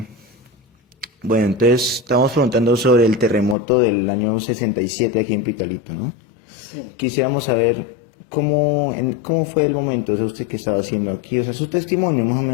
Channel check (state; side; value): drops out; right; at 3.6 s